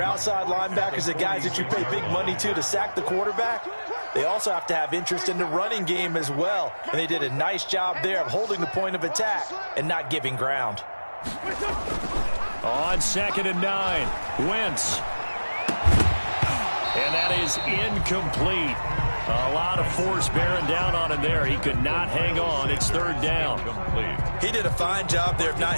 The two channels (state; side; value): inverted; both; correlation -1.00